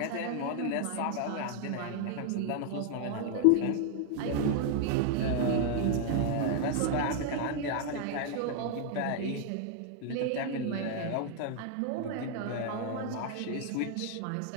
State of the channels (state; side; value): different; both; correlation 0.00